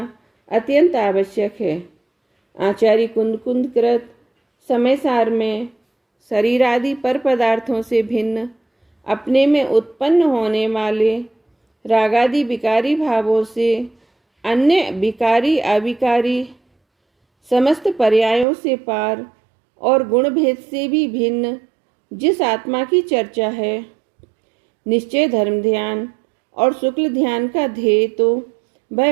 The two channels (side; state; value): left; drops out; at 18.4 s